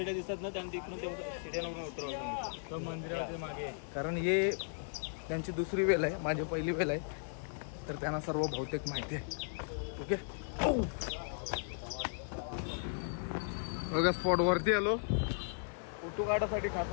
दिसतात ना, त्याने तिकडून ते सिड्यावरून उतरवलं मंदिराच्या मागे. कारण हे त्यांची दुसरी वेल आहे, माझी पहिली वेल आहे. तर त्यांना सर्व बहुतेक माहिती आहे. ओके, बघा स्पॉट वरती आलो. फोटो काढासाठी खास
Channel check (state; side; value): silent; right; 54 dB below the other